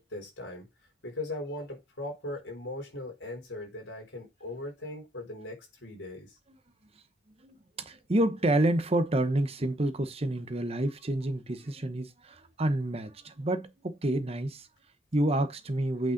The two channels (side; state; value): both; normal; correlation 0.71